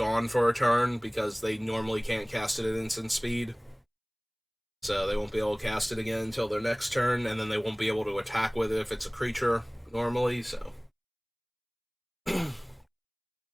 for a turn, because they normally can't cast it at instant speed. So they won't be able to cast it again until their next turn, and then they won't be able to attack with it if it's a creature normally, so.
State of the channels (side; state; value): both; identical; correlation 1.00